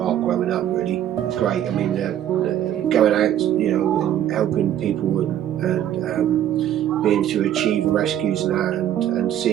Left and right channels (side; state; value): left; quieter; 11.1 dB